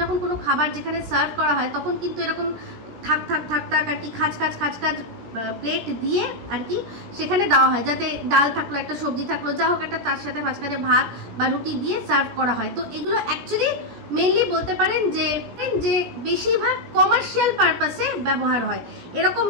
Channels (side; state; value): left; late; 17 ms